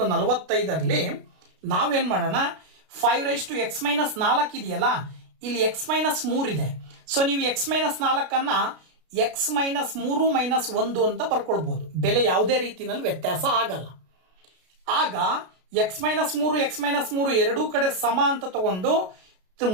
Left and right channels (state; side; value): late; left; 33 ms